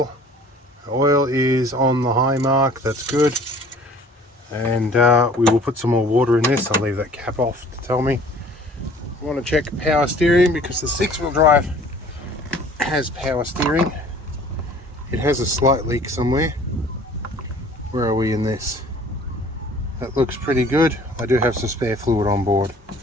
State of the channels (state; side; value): normal; both; correlation 0.51